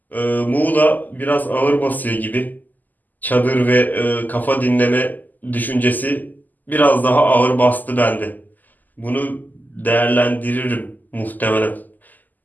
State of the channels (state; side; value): late; right; 0.084 ms